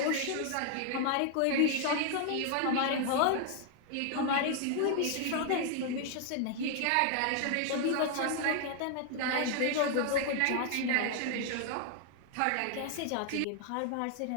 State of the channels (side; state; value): both; different; correlation 0.00